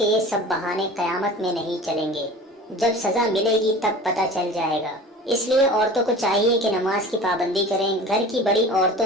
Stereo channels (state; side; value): normal; both; correlation 0.39